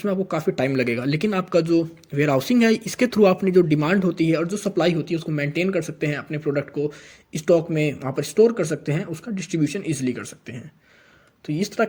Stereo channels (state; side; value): identical; both; correlation 1.00